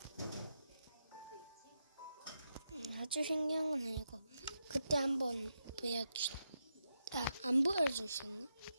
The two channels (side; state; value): both; inverted; correlation -0.85